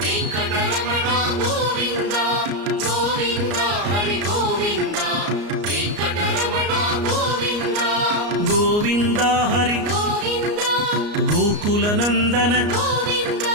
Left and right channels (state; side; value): late; left; 34 ms